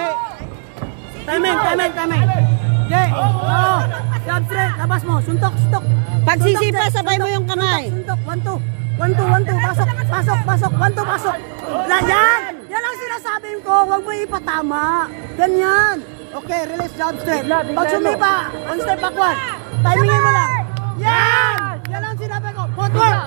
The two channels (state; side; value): silent; left; digital silence